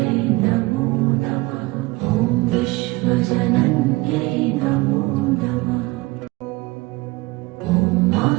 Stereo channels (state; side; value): quieter; left; 22.5 dB